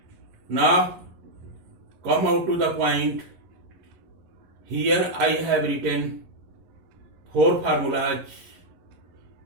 Now come out to the point. Here I have written 4 formulas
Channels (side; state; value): left; late; 11 ms